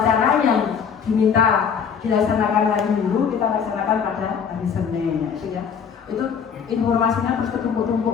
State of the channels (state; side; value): quieter; right; 6.9 dB